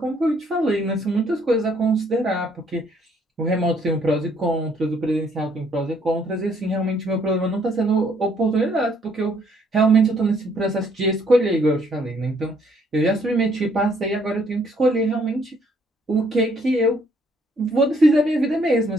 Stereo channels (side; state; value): both; normal; correlation 0.66